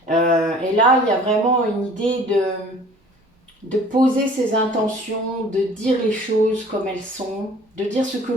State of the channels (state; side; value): normal; both; correlation 0.50